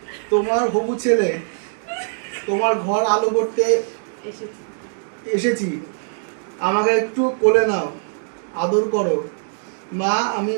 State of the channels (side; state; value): left; silent; digital silence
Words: তোমার হবু ছেলে। তোমার ঘর আলো করতে এসেছি, আমাকে একটু কোলে নাও, আদর করো। মা, আমি